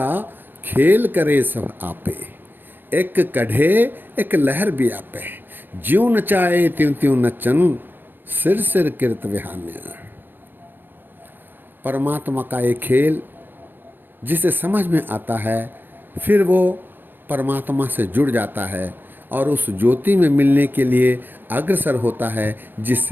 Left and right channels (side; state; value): left; late; 0.094 ms